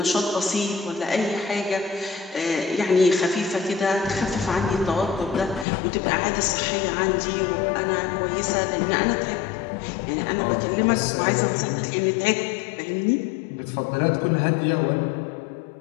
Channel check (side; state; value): right; drops out; at 5.7 s